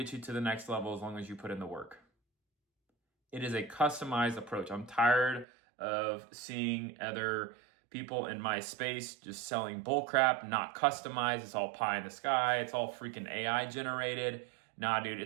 you to the next level as long as you put in the work. It is a customized approach. I'm tired of seeing other people in my space just selling bullcrap, not customized. It's all pie in the sky. It's all freaking AI generated. Nah, dude,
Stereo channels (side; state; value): left; drops out; at 5.5 s